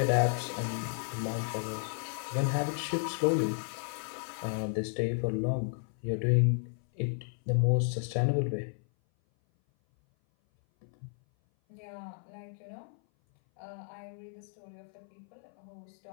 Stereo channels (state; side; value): silent; right; 56 dB below the other